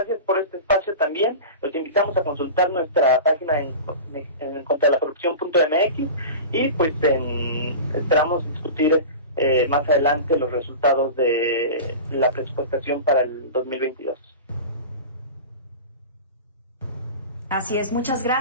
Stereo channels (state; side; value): inverted; both; correlation -0.31